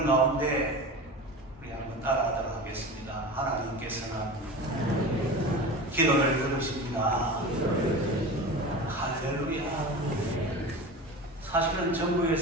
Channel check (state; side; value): normal; both; correlation 0.31